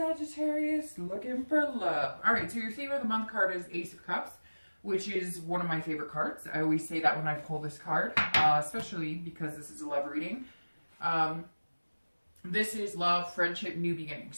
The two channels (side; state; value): both; inverted; correlation -1.00